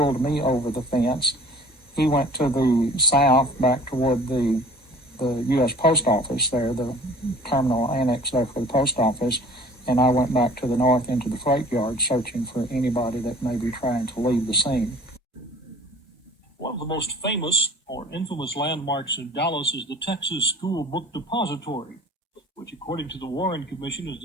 me over the fence. He went to the south back toward the U.S. Post Office there, the terminal annex there for the post office, and I went back to the north into the freight yard searching for anybody that may be trying to leave the scene. One of the most famous or infamous landmarks in Dallas is the Texas School Book Depository, which, according to the Warren Commission, is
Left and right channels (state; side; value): normal; both; correlation 0.47